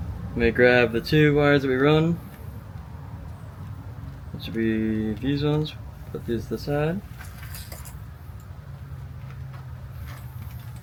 going to grab the 2 wires that we run. That should be these ones. Put these to the side.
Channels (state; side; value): identical; both; correlation 1.00